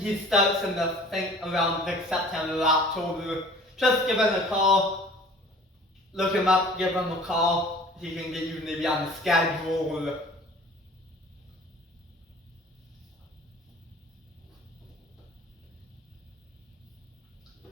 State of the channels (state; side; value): normal; both; correlation 0.47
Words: starts in around September or October. Just give him a call, look him up, give him a call. He can get you maybe on the schedule or